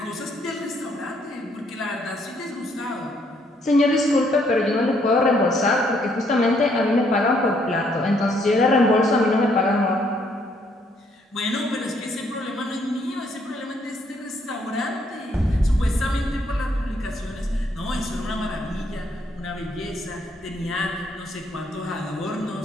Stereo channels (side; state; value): both; normal; correlation 0.69